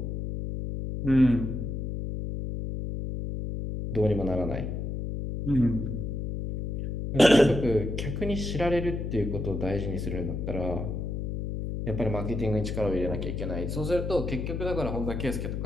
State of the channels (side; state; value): left; noise; hum, 3 dB below the sound